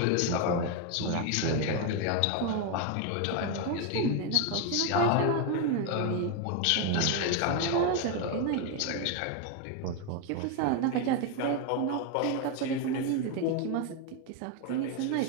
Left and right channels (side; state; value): both; different; correlation 0.01